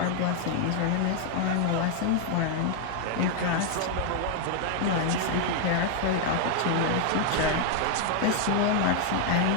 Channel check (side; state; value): both; different; correlation 0.00